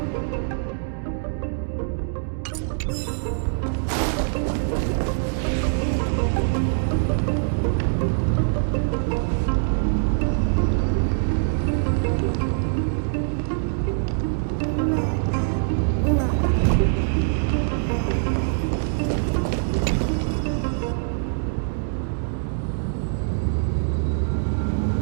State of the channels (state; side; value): silent; left; 63 dB below the other